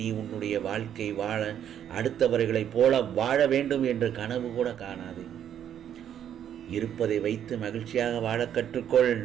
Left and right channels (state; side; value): quieter; left; 9.7 dB